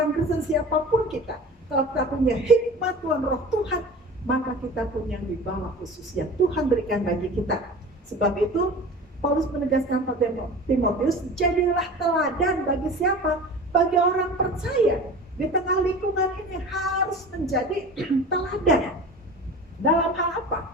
Kristen siapapun kita, kalau kita punya hikmat Tuhan, roh Tuhan, maka kita punya wibawa khusus yang Tuhan berikan bagi kita. Sebab itu Paulus menegaskan pada Timotius, jadilah teladan bagi siapa? Bagi orang percaya. Di tengah lingkungan ini harus menjadi teladan. Dalam hal apa?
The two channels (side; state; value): both; normal; correlation 0.37